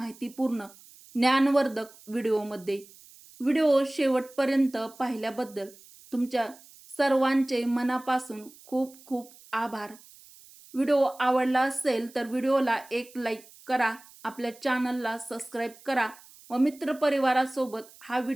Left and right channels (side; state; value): right; noise; hiss, 23 dB below the sound